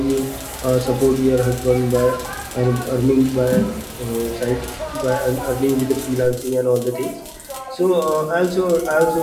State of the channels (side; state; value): both; identical; correlation 1.00